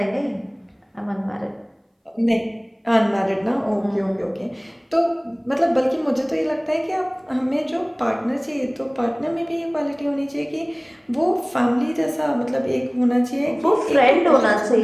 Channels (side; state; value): both; identical; correlation 1.00